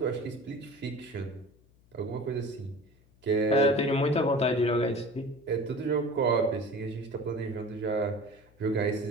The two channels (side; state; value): left; noise; hum, 30 dB below the sound